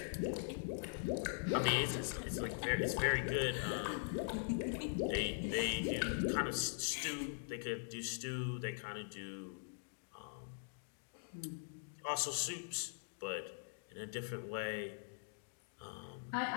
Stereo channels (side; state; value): right; silent; digital silence